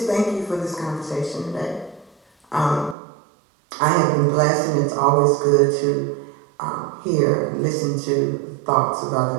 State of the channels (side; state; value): left; drops out; at 3.0 s